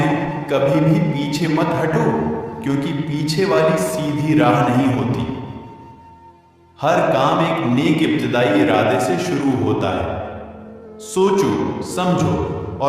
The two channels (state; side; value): identical; both; correlation 1.00